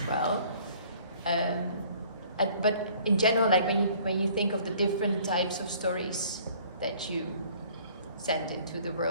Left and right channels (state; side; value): inverted; both; correlation -0.55